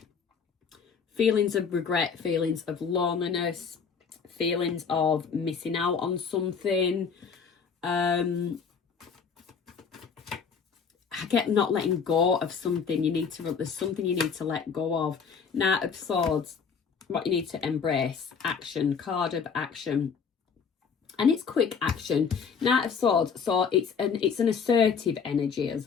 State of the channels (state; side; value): quieter; right; 6.1 dB